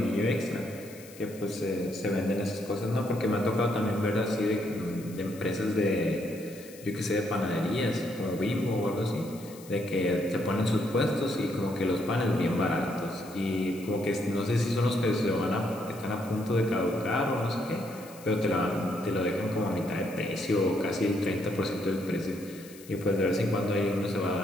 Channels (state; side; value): noise; left; hiss, 20 dB below the sound